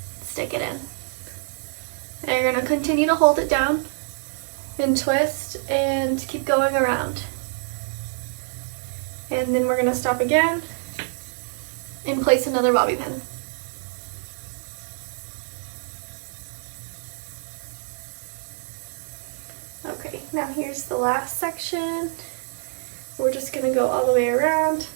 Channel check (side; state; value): left; silent; 61 dB below the other